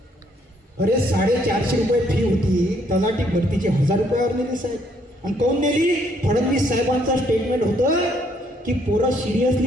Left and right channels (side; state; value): both; normal; correlation 0.68